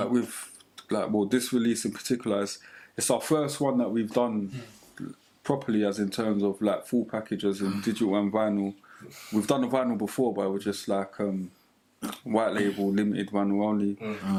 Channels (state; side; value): identical; both; correlation 1.00